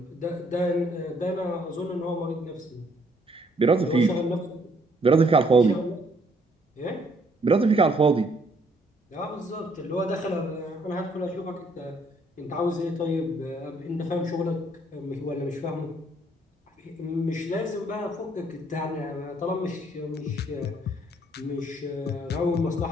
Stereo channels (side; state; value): both; normal; correlation 0.66